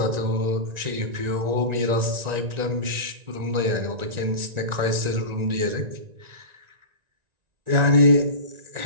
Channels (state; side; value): late; left; 1.9 ms